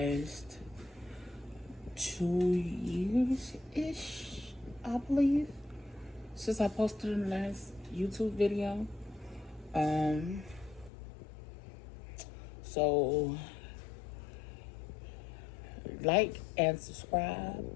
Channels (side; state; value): right; drops out; at 10.9 s